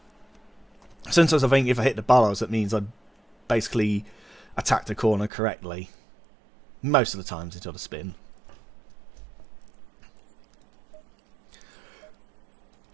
Sometimes I think if I hit the bollards, that means I basically attacked the corner correctly. Most of the times it's on a spin.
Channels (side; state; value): left; drops out; at 5.3 s